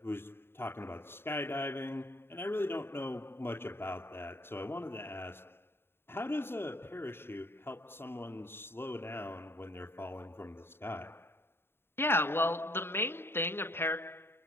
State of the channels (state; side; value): late; right; 0.11 ms